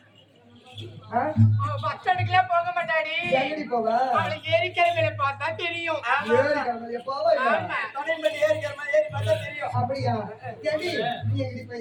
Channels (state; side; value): identical; both; correlation 1.00